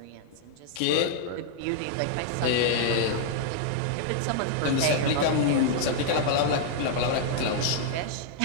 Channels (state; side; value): different; both; correlation -0.01